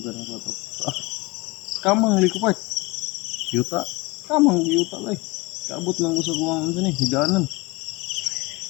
ako ito. Kamang likupart. Yuta. Kamang yuta lang. Kaabot lang ko sa buwangan dyan eh. Higanan.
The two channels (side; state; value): right; quieter; 23.9 dB